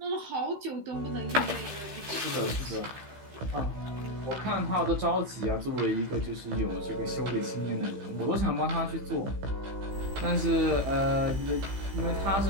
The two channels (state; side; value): late; left; 15 ms